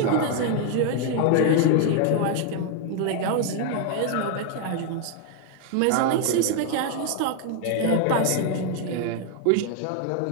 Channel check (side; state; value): both; different; correlation 0.00